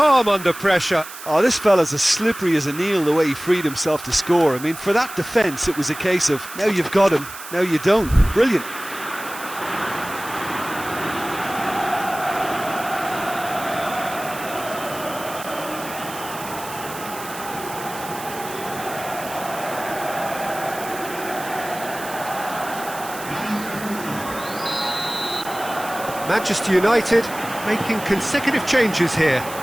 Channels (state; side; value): noise; right; hiss, 13 dB below the sound